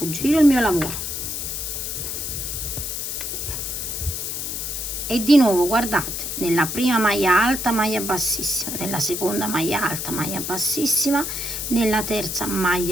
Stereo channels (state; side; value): noise; left; hiss, 4 dB below the sound